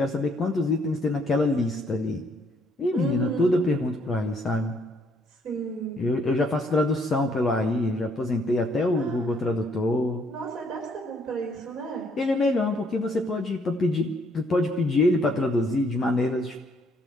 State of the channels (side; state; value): both; normal; correlation 0.68